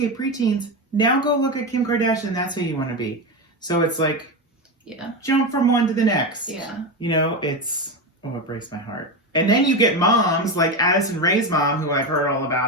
preteens, now go look at Kim Kardashian. That's who you want to be. So it's like, jump from one to the next. Yeah. You know, it breaks my heart. And then you get moms like Addison Rae's mom, who I've heard all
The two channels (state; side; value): normal; both; correlation 0.16